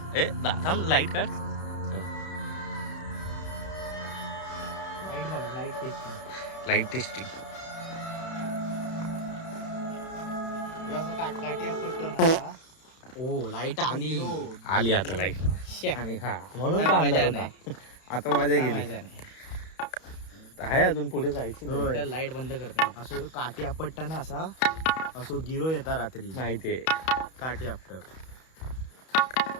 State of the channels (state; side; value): late; right; 31 ms